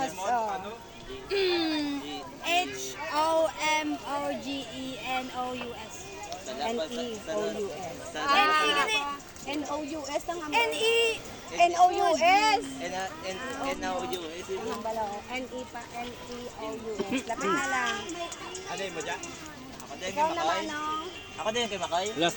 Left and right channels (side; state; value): both; identical; correlation 1.00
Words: Oh. H-O-M-O-G-E-N-O-U-S. N-E-O-U-S. N-E-N-O-U-S ang N-E. N-O-U-S. N-O-U-S. Ang bala oh. N-E pa. N-E-O-U-S. Lapit na lang. Ano yung mo dyan? Ako din Ikaw kay naman Makoy. no. Ako din kay Makoy. Last